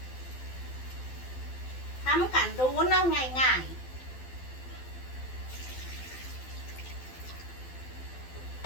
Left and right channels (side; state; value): right; late; 12 ms